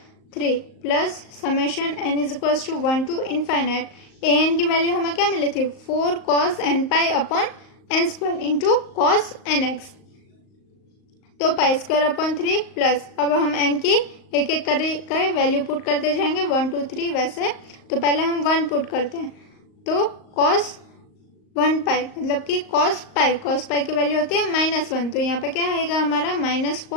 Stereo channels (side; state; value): right; late; 38 ms